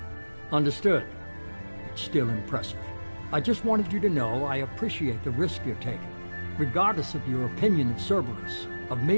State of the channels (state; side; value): inverted; both; correlation -1.00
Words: Understood. It's still impressive. I just wanted you to know I appreciate the risk you're taking. Regardless of your opinion of Cerberus, of